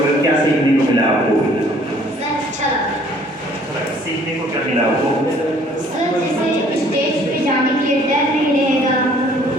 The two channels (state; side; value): normal; both; correlation 0.58